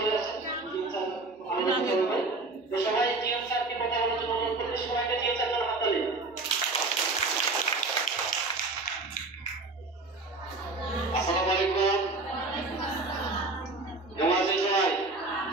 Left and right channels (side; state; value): left; quieter; 3.3 dB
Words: আসছেন, টিএম স্যার আমাদের করবে। তো সবাই টিএম স্যারকে কথা বলার জন্য অনুরোধ করতে, সবাইকে টিএম স্যার জন্য হাত তালি। আসসালামু আলাইকুম, কেমন আছেন সবাই?